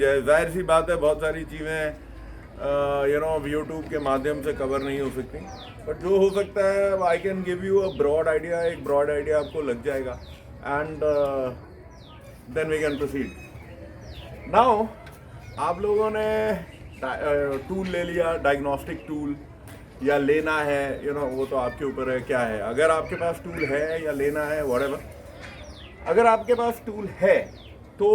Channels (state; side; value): identical; both; correlation 1.00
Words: जाहिर सी बात है, बहुत सारी चीज़ें यूट्यूब के माध्यम से कवर नहीं हो सकती, बट जो हो सकता है I can give you a broad idea. एक ब्रॉड आइडिया आपको लग जाएगा and then we can proceed. Now आप लोगों ने टूल ले लिया, डायग्नोस्टिक टूल या लेना है, वो तो आपके ऊपर है क्या है। अगर आपके पास टूल है या लेना है व्हाटएवर, अगर आपके पास टूल है तो